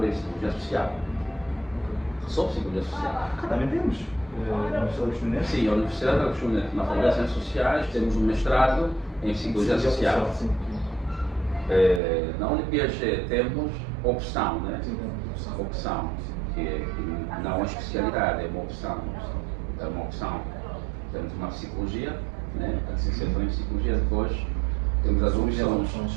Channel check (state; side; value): drops out; left; at 12.0 s